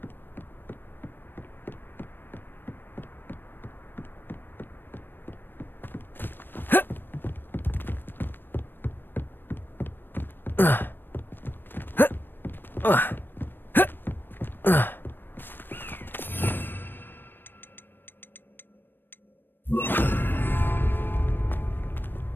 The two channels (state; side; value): late; right; 0.095 ms